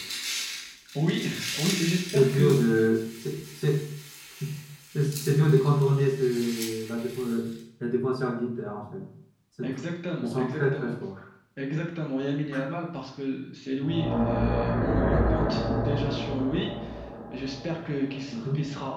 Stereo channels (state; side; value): identical; both; correlation 1.00